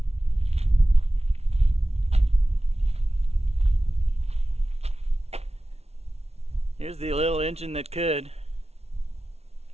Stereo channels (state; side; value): late; left; 0.31 ms